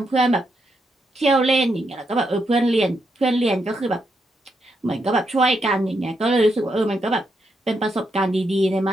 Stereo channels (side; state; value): both; normal; correlation 0.81